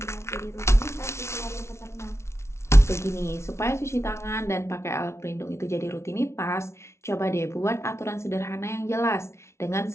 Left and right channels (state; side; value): late; right; 0.13 ms